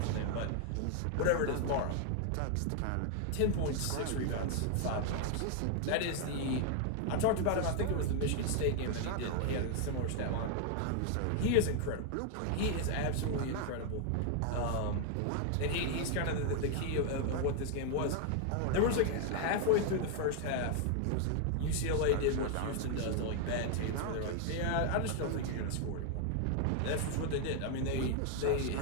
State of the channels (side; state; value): both; different; correlation 0.00